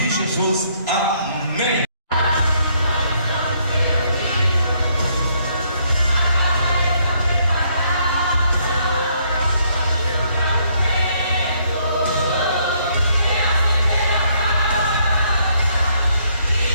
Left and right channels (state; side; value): inverted; both; correlation -0.70